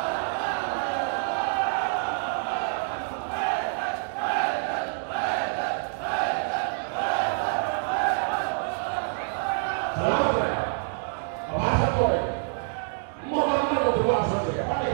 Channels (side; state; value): left; silent; digital silence